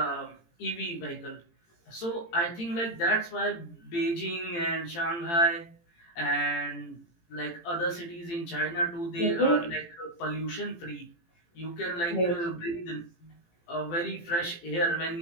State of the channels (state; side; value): late; right; 18 ms